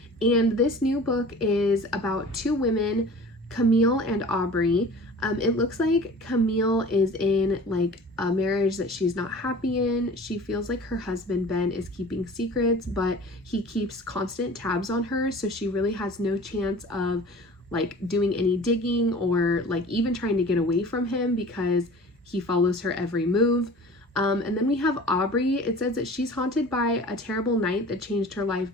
And this new book is about two women, Camille and Aubrey. It looks like Camille is in like a marriage that she's not happy in. She feels like her husband Ben is keeping secrets, but he keeps constant tabs on her, so she really has no chance of like doing any digging or like even trying to get away from him because he follows her every move. And then we have Aubrey. It says that she's haunted by a terrible night that changed her life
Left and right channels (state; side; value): normal; both; correlation 0.42